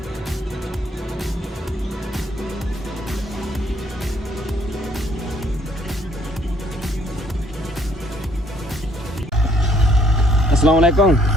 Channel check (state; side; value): normal; both; correlation 0.64